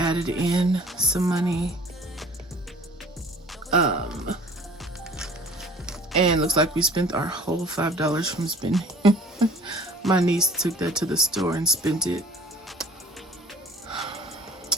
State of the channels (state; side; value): normal; both; correlation 0.49